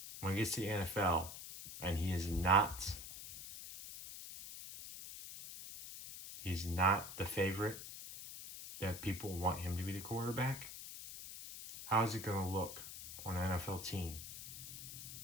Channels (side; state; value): left; noise; hiss, 10 dB below the sound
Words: When he gets to the NFL and he's not the favorite that people want him to be the quarterback, how is it going to look on an NFL team